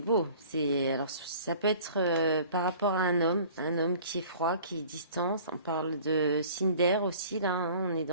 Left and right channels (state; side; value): inverted; both; correlation -0.48